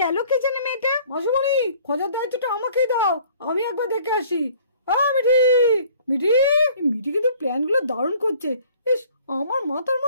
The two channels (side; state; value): both; inverted; correlation -0.55